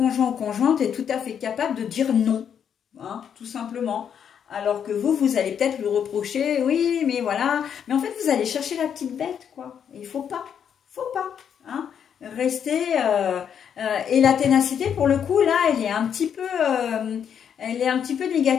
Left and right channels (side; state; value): right; quieter; 8.2 dB